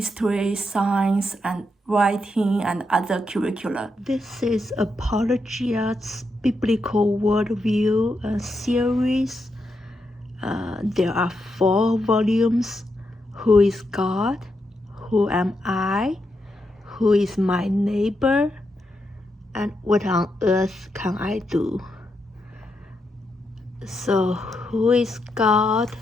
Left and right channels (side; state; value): both; normal; correlation 0.83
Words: science, and writing, and other curricula. This is Apologia Biblical worldview series. There are 4 volumes. Who is God? Who am I? Who is my neighbor? And what on earth can I do? So, who is God?